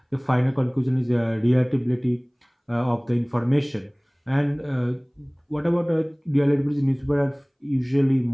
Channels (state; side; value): identical; both; correlation 1.00